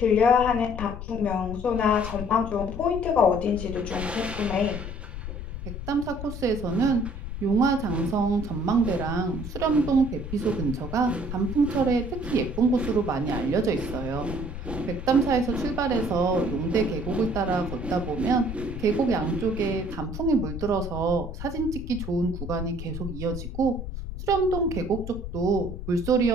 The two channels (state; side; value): noise; left; rumble, 8 dB below the sound